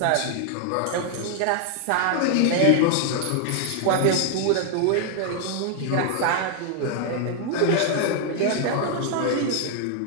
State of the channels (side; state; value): both; different; correlation 0.00